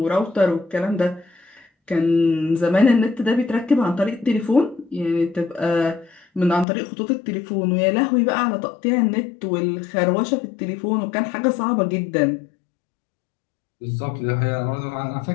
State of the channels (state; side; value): drops out; right; at 6.7 s